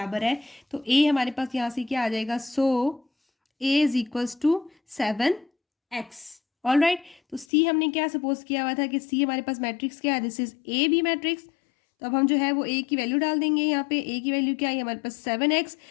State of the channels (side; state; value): right; drops out; at 7.5 s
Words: है, तो a हमारे पास यहाँ से क्या आ जाएगा, so a is equals to 7x। All right, तो c हमने क्या सपोज किया हुआ था कि c हमारे पास मैट्रिक्स क्या है, this is a b matrix. तो अब हम जो है वो a की वैल्यू डाल देंगे। यहाँ पे a की वैल्यू क्या है हमारे पास 7x